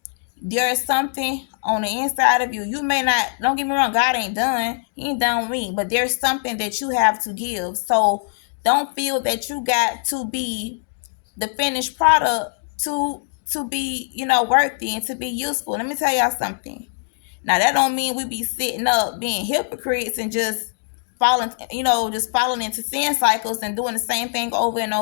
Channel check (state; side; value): silent; right; digital silence